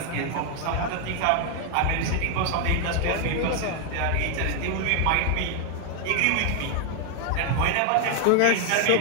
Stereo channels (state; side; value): different; both; correlation 0.00